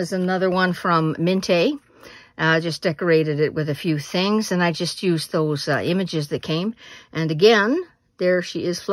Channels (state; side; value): identical; both; correlation 1.00